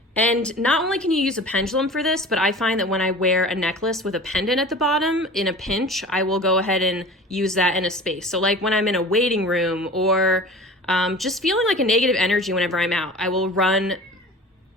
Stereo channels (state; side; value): normal; both; correlation 0.39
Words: And not only can you use a pendulum for this, but I find that when I wear a necklace with a pendant at the bottom, in a pinch, I will go ahead and use that in a space. So like when I'm in a waiting room or just feeling like a negative energy whenever I'm out, I will run